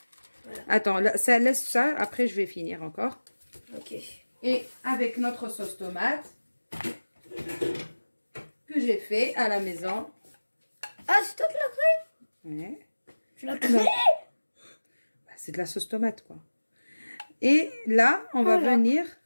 Attends, là, ça laisse ça. Après, je vais finir encore. Ok. Et avec notre sauce tomate que j'ai fait à la maison. Ah, c'est toi qui l'as fait? Ouais. Tu l'as fait? Bah, c'est de la sauce tomate, quoi. Et là, on va Voilà. venir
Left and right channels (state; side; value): inverted; both; correlation -1.00